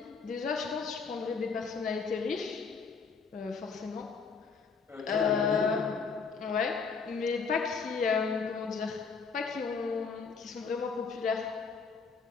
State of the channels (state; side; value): quieter; right; 5.2 dB